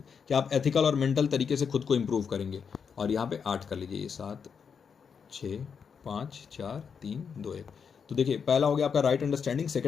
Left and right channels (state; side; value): quieter; right; 6.5 dB